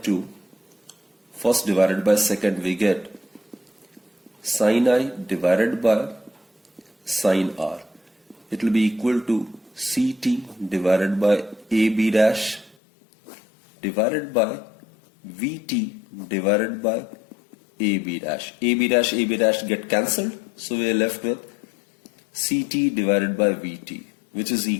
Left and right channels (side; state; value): right; drops out; at 12.8 s